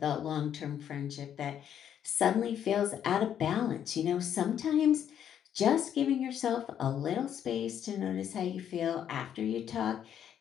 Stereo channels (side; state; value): right; quieter; 9.4 dB